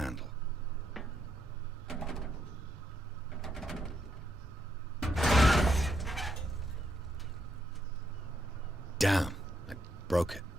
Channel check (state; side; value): normal; both; correlation 0.78